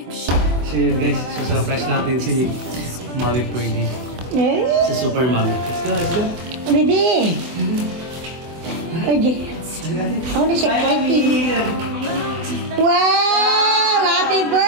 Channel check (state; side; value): late; left; 24 ms